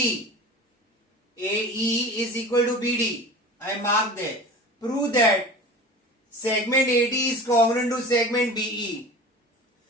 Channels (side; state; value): both; normal; correlation 0.36